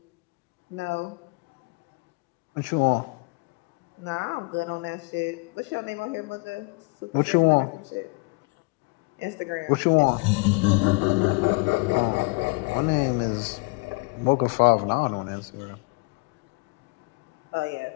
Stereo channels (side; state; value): right; quieter; 28.5 dB